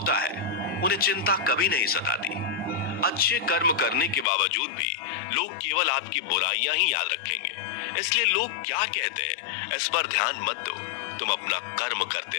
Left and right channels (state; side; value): drops out; right; at 4.2 s